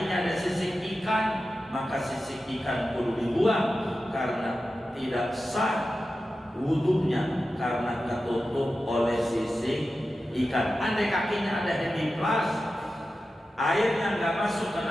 ada sisik ikan, maka sisik ikan kudu dibuang karena tidak sah wudunya karena tertutup oleh sisik ikan. Andai kakinya ada hemiplas, airnya enggak masuk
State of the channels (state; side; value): normal; both; correlation 0.93